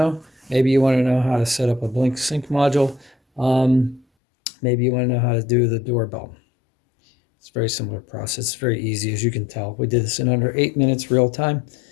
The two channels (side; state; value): right; drops out; at 4.0 s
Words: Maybe you want to know how to set up a Blink sync module. Maybe you want to know how to do the doorbell. It's a very similar process. It's very easy, as you can tell. We did this in under 8 minutes real time.